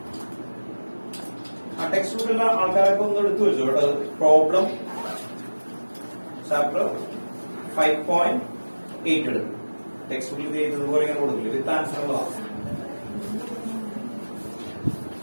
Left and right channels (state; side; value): inverted; both; correlation -1.00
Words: ആ text ബുക്കിലുള്ള ആൾക്കാരൊക്കെ ഒന്ന് എടുത്തു വെച്ചു കേട്ടോ. പ്രോബ്ലം ചാപ്റ്റർ 5.8 എടുക്കും. ടെക്സ്റ്റ് ബുക്കിൽ ഇതുപോലെ ഇങ്ങനെ കൊടുക്കില്ല. വിത്ത് ആൻസർ ഉള്ളതാണ്.